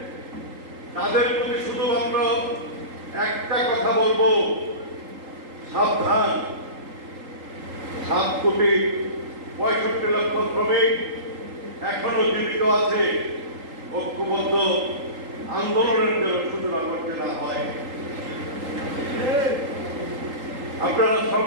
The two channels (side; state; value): left; late; 3.8 ms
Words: তাদের প্রতি শুধুমাত্র একটা কথা বলবো, সাবধান। 7,65,00,000 শ্রমিক এখনো জীবিত আছে। ঐক্যবদ্ধ আন্দোলনের সূচনা করতে না হয়। আপনারা